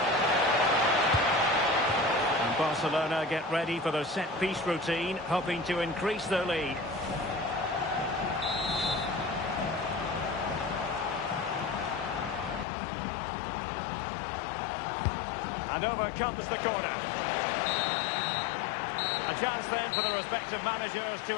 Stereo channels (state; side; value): drops out; right; at 12.7 s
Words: And Barcelona get ready for their set-piece routine, hoping to increase their lead. And over comes the corner. A chance then for the respective managers